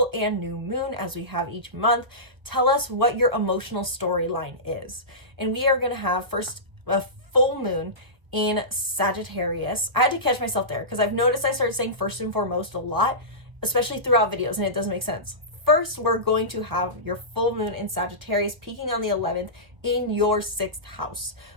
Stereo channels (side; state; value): left; late; 1.2 ms